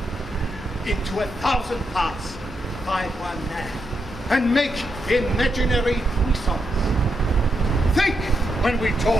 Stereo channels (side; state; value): both; normal; correlation 0.83